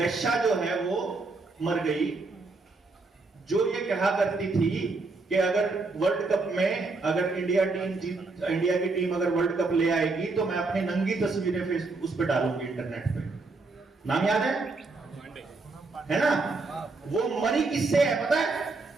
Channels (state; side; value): quieter; left; 3.6 dB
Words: जो है वो मर गई, जो ये कहा करती थी कि अगर वर्ल्ड कप में अगर इंडिया की टीम अगर वर्ल्ड कप ले आएगी तो मैं अपनी नंगी तस्वीरें फेसबुक उस पर डालूंगी, इंटरनेट पे। नाम याद है ना? वो मरी किससे है पता है?